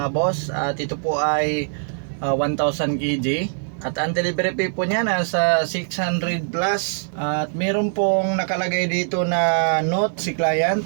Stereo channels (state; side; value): silent; left; 56 dB below the other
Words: boss. At ito po ay 1,000 kg. At ang delivery fee po niya nasa 600 plus. At meron pong nakalagay dito na note si client.